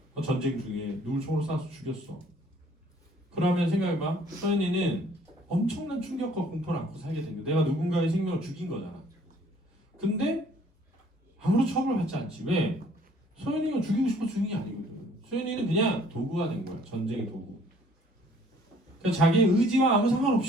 전쟁 중에 누굴 총으로 쏴서 죽였어. 그러면 생각해봐. 서현이는 엄청난 충격과 공포를 안고 살게 된 거야. 내가 누군가의 생명을 죽인 거잖아. 근데 아무런 처벌을 받지 않지. 왜? 서현이가 죽이고 싶어 죽인 게 아니거든. 서현이는 그냥 도구가 된 거야. 전쟁의 도구. 그러니까 자기의 의지와 아무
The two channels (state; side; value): normal; both; correlation 0.58